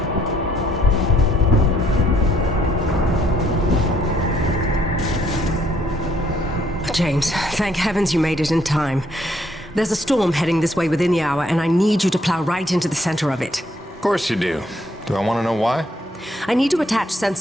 James, thank heavens you made it in time. There's a storm heading this way within the hour, and I need you to plow right into the center of it. Of course you do. Do I want to know why? I need to attach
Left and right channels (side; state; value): both; normal; correlation 0.68